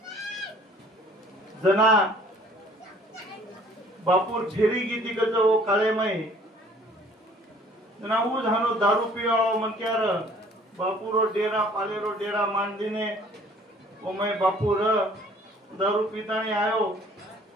जना बापूर झेरी गीती कच वो काळे में जना वो झानो दारू पिवाळो मनक्यार बापूरो डेरा पालेरो डेरा मांडीने वो मैं बापूर दारू पीतानी आयो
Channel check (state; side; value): normal; both; correlation 0.55